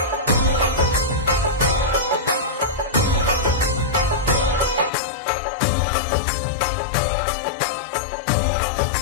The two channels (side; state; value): right; drops out; at 4.9 s